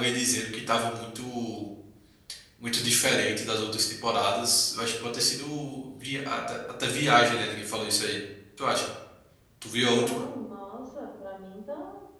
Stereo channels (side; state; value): both; identical; correlation 1.00